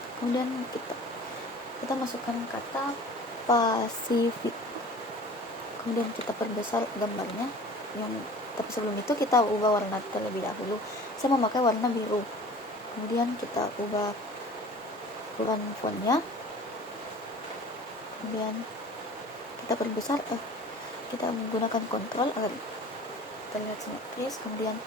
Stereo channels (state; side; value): normal; both; correlation 0.43